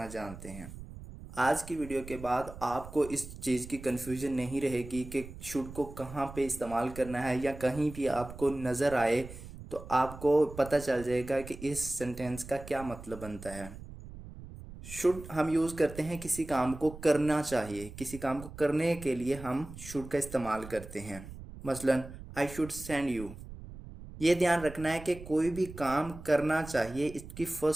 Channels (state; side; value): noise; right; rumble, 14 dB below the sound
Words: जानते हैं? आज की वीडियो के बाद आपको इस चीज़ की कन्फ्यूजन नहीं रहेगी कि शुड को कहाँ पे इस्तेमाल करना है, या कहीं भी आपको नज़र आए तो आपको पता चल जाएगा कि इस सेंटेंस का क्या मतलब बनता है. शुड हम यूज़ करते हैं किसी काम को करना चाहिए, किसी काम को करने के लिए हम शुड का इस्तेमाल करते हैं. मसलन आई शुड सेंड यू. ये ध्यान रखना है कि कोई भी काम करना चाहिए इसकी